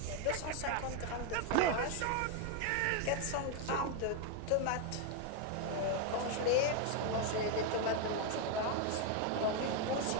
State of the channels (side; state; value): both; different; correlation 0.01